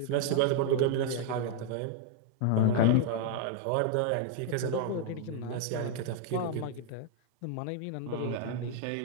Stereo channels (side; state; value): both; different; correlation 0.00